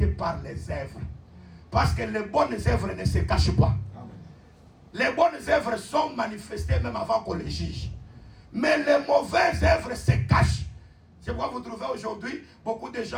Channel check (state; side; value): identical; both; correlation 1.00